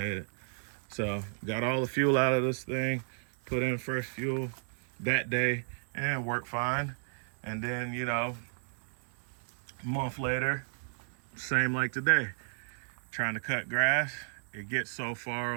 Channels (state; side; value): silent; left; 56 dB below the other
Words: So got all the fuel out of this thing, put in fresh fuel that day, and it worked fine. And then, you know, a month later, same like today, trying to cut grass. It gets so far